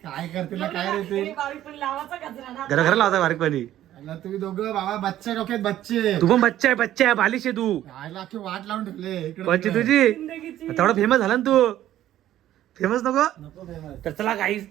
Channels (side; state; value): left; quieter; 12.8 dB